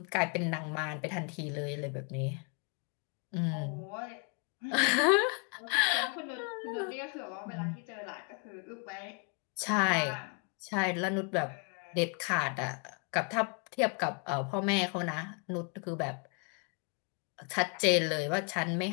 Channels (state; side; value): quieter; right; 37.1 dB